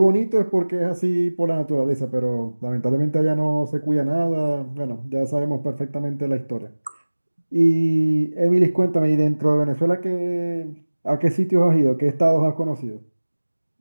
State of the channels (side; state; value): both; inverted; correlation -1.00